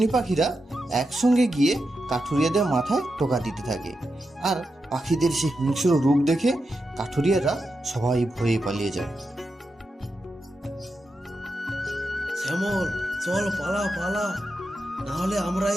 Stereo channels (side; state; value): both; normal; correlation 0.88